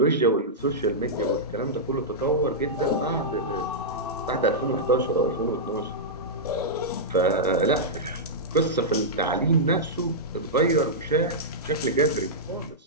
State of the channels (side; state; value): both; normal; correlation -0.10